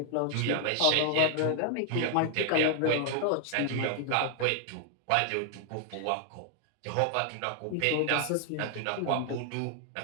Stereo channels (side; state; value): both; different; correlation 0.00